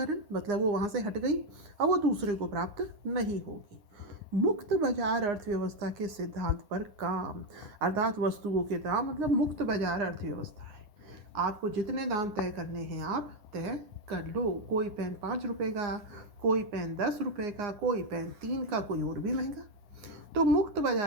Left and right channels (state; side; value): late; left; 9.7 ms